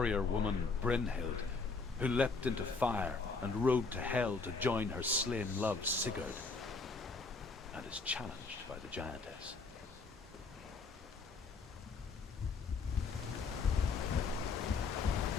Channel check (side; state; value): right; quieter; 4.3 dB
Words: woman Brynhild, who leapt into fire and rode to Hell to join her slain love Sigurd, and is challenged by the giantess.